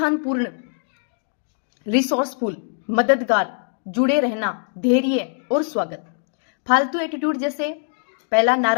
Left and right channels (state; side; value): silent; right; 64 dB below the other